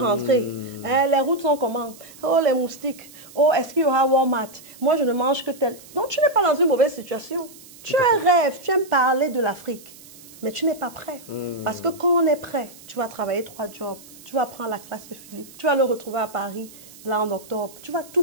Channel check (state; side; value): noise; right; hiss, 20 dB below the sound